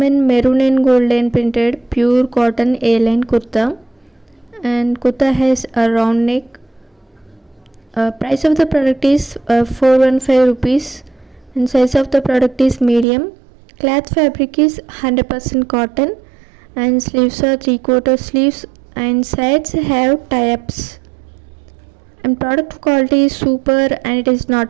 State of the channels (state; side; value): drops out; left; at 13.1 s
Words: maroon and golden printed pure cotton A-line kurta, and kurta has a round neck. Price of the product is 415 rupees and size of the product is medium. Cloth fabric is 100% cotton and sleeves are 3/4 sleeves and sides have tie-ups, and product quality is super and it is not